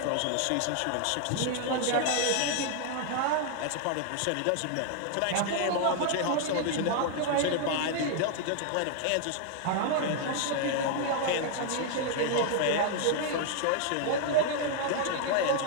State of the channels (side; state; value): both; different; correlation 0.00